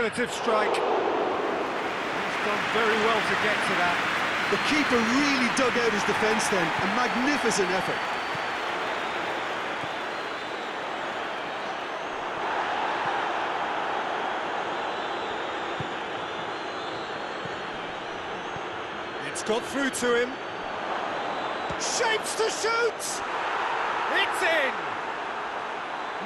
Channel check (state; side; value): identical; both; correlation 1.00